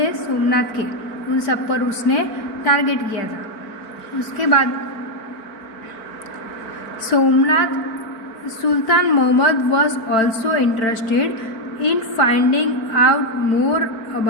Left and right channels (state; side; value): late; right; 4.5 ms